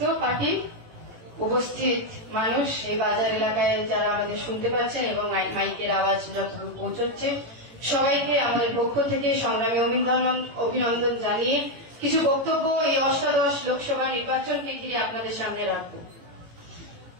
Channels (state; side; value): late; left; 18 ms